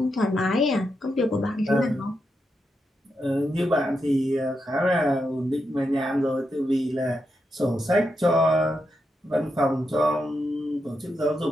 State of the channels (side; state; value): both; normal; correlation 0.85